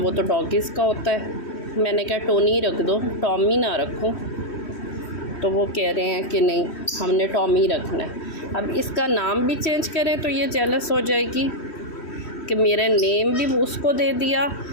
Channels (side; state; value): right; late; 3.1 ms